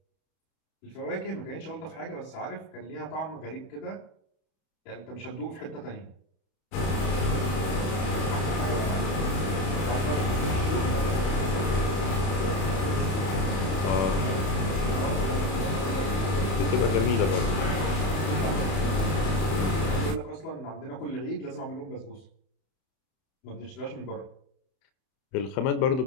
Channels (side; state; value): right; late; 31 ms